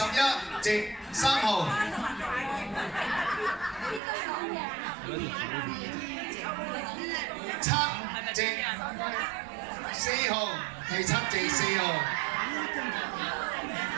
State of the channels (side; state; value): left; drops out; at 4.0 s